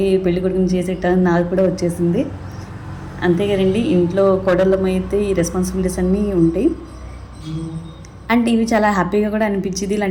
పెళ్లి కొడుకుని చేసేటానికి నాకు కూడా వచ్చేసింది. అంతే కదండి, ఇంట్లో కోడళ్ళమైతే ఈ రెస్పాన్సిబిలిటీస్ అన్నీ ఉంటాయి. అండ్ ఇవి చాలా హ్యాపీగా కూడా అనిపించింది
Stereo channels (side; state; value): both; identical; correlation 1.00